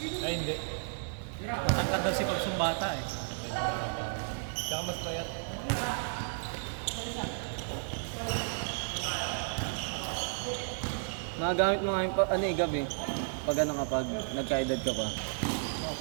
Ay hindi. Matangkad daw si Pops yung bata eh. Tsaka mas payat. Nagagamit mo nga yung ano eh, gabi. Pag ano kapag nagka-edad ka pa. Oh,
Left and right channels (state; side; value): silent; left; digital silence